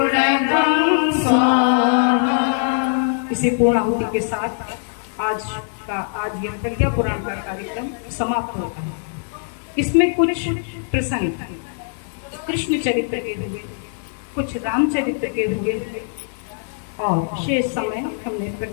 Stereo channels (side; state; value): right; silent; digital silence